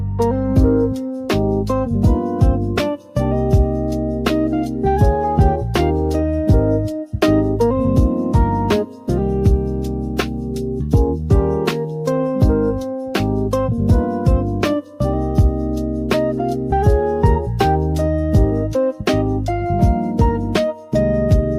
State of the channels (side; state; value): both; identical; correlation 1.00